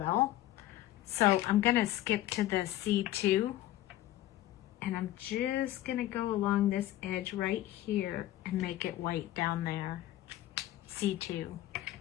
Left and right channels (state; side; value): quieter; right; 14.4 dB